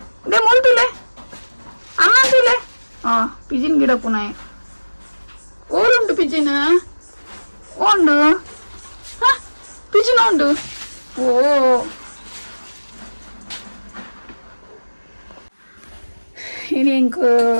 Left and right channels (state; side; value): inverted; both; correlation -1.00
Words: ದೇ ಮೂಲ್ ತುಲೆ ಅಮ್ಮ ತುಲೆ ಪಿಜ್ಜಿನ ಗಿಡ ಪುನ ಓರುಂಟು ಪಿಜ್ಜಿನ ಉಂಡು ಪಿಜ್ಜಿನ ಉಂಡು ಓ ಇನ್ನಿಂಕು